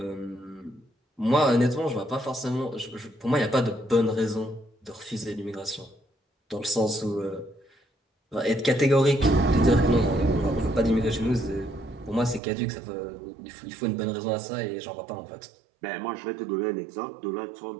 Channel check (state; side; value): drops out; left; at 12.4 s